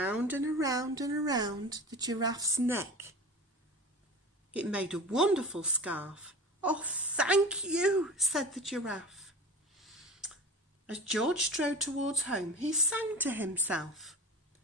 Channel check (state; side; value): normal; both; correlation 0.36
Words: and around and around the giraffe's neck. It made a wonderful scarf. "Oh, thank you," said the giraffe. As George strode towards home, he sang to himself.